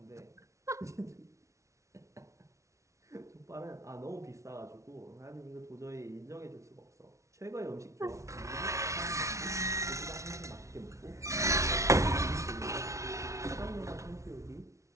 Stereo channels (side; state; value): left; late; 0.14 ms